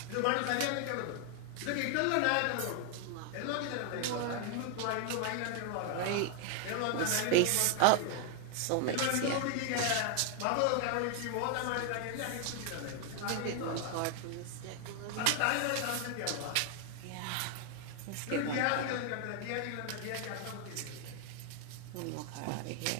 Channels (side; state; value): both; different; correlation 0.00